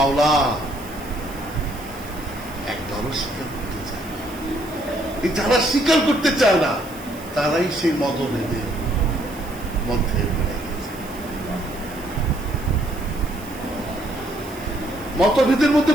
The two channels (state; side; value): noise; right; hiss, 18 dB below the sound